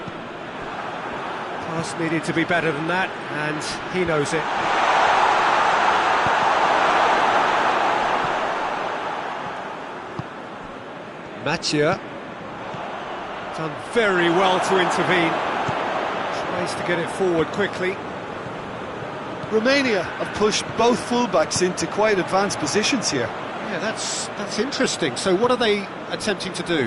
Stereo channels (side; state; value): both; identical; correlation 1.00